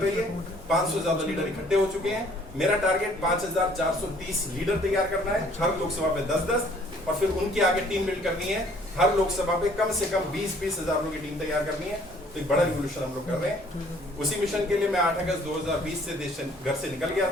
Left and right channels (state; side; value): normal; both; correlation 0.59